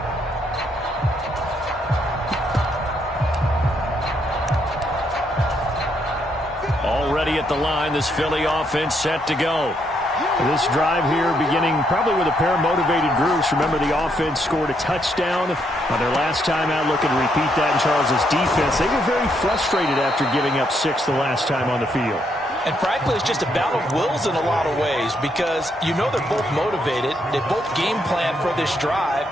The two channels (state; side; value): normal; both; correlation 0.75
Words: Already at the line, this Philly offense set to go. This drive here beginning probably with a pair of motivated groups. Remember, the offense scored a touchdown on their last time out. Looking to repeat that in Charles's defense. They were very frustrated after giving up 6 the last time on the field. And frankly, it's just a battle of wills in a lot of ways because you know they're both motivated. They both game plan for this drive,